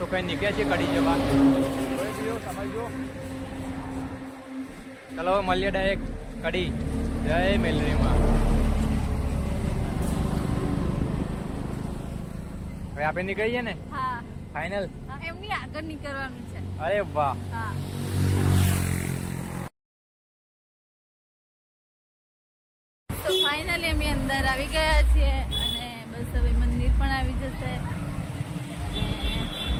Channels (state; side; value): identical; both; correlation 1.00